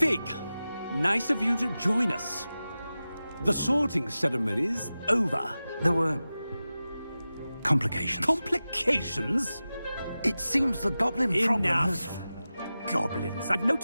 nice of you to join us. The sorting ceremony's over. There were complications. Complications? It seems the goblin problem has... Enough! Goblins. I've no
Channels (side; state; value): both; inverted; correlation -0.95